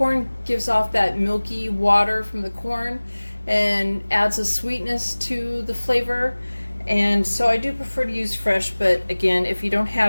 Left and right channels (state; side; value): inverted; both; correlation -1.00